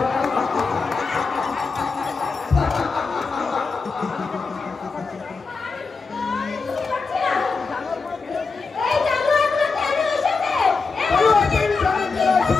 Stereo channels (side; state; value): right; quieter; 4.5 dB